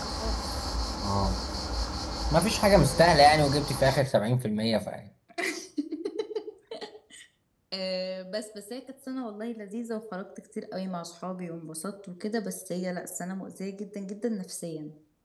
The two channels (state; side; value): identical; both; correlation 1.00